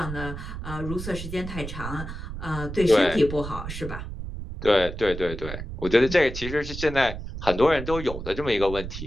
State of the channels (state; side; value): noise; right; rumble, 8 dB below the sound